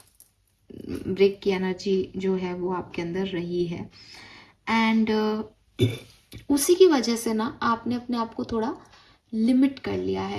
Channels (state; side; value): identical; both; correlation 1.00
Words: ब्रेक की एनर्जी जो है वो आपके अंदर रही है। एंड उसी की वजह से ना आपने अपने आप को थोड़ा लिमिट कर लिया